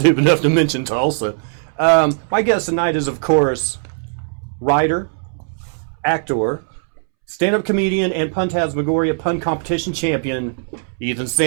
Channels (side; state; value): left; silent; 67 dB below the other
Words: enough to mention Tulsa. My guest tonight is, of course, writer, actor, stand-up comedian, and Puntasmagoria Pun Competition champion, Ethan